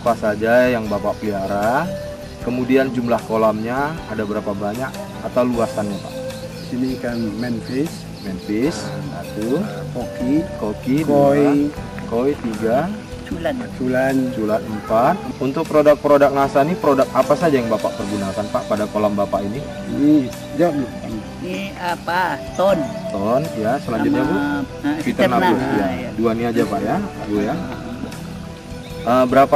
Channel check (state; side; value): identical; both; correlation 1.00